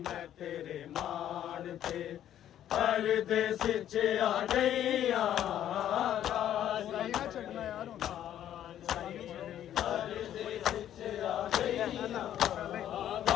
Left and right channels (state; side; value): quieter; right; 11.1 dB